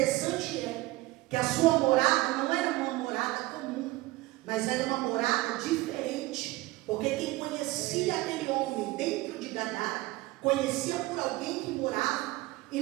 é que a sua morada não era uma morada comum, mas era uma morada diferente. Porque quem conhecia aquele homem dentro de Gadara, conhecia por alguém que morava em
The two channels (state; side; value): quieter; left; 19.6 dB